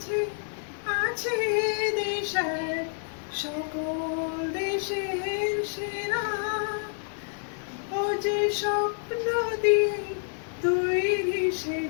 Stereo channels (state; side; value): silent; right; digital silence